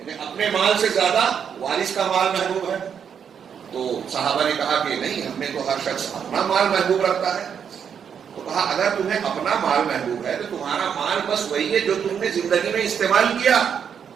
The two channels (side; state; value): left; quieter; 7.6 dB